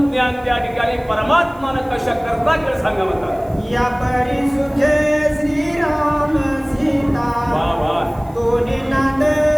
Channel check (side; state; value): right; noise; hiss, 28 dB below the sound